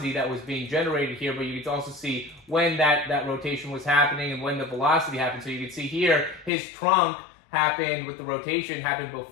that was being generated here, but you can also see when that rotation was happening and when the velocity happened. So you can see here his trunk happened with the rotation happened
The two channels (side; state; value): right; drops out; at 6.5 s